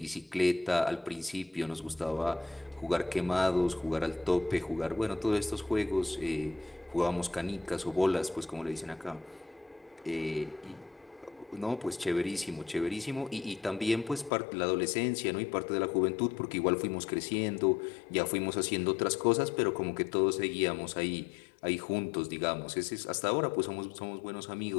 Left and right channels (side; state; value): right; drops out; at 14.3 s